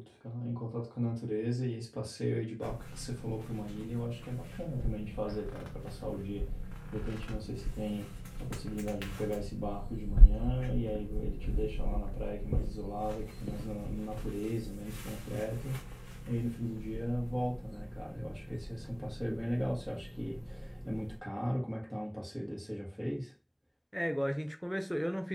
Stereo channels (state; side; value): identical; both; correlation 1.00